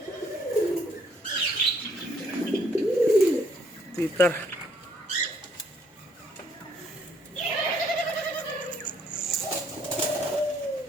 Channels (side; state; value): both; normal; correlation 0.66